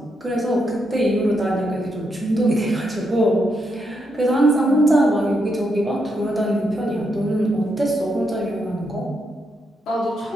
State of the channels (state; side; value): normal; both; correlation 0.81